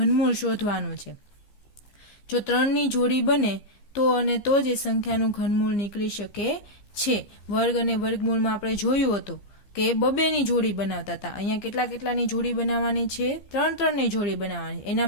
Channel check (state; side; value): late; right; 15 ms